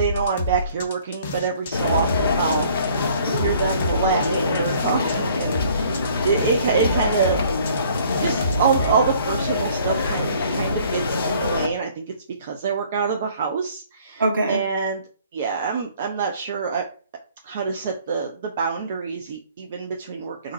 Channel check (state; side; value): inverted; both; correlation -0.57